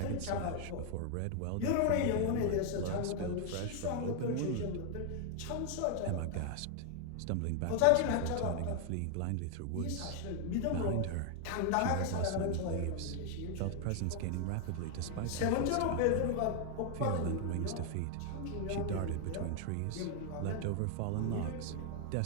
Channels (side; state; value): both; different; correlation 0.00